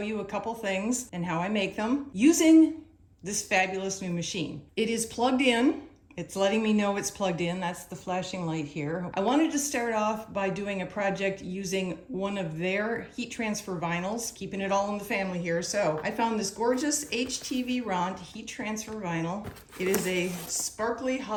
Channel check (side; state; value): both; identical; correlation 1.00